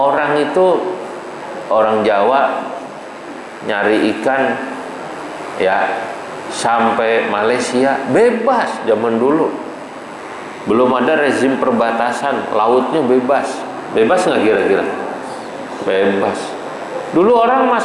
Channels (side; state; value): both; identical; correlation 1.00